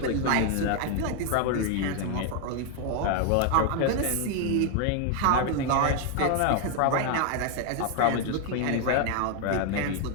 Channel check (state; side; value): different; both; correlation 0.01